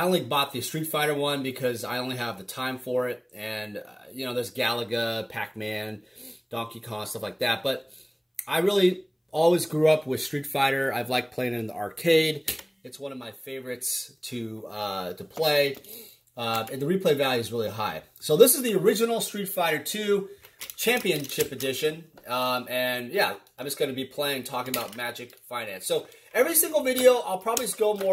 only bought the Street Fighter one because I only have the time for it, and there's Galaga, Pac-Man, Donkey Kong, stuff like that. But I really always grew up with Street Fighter. I've liked playing it in the arcade. It's one of my favorites to play, and the replay value is really high. So this is the original Street Fighter 2 Championship Edition, and yeah, I'm just going to be talking about Magic Finance. So every single video, I'll probably just go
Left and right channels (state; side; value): identical; both; correlation 1.00